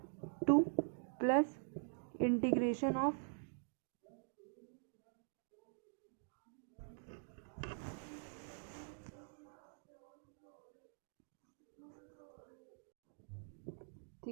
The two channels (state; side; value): silent; left; digital silence